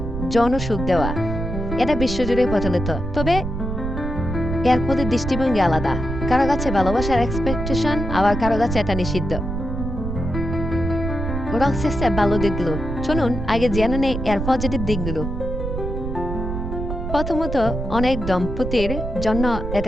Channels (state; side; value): noise; right; rumble, 4 dB below the sound